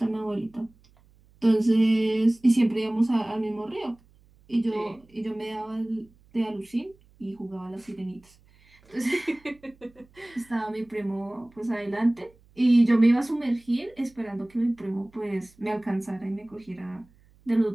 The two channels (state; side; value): noise; right; hum, 30 dB below the sound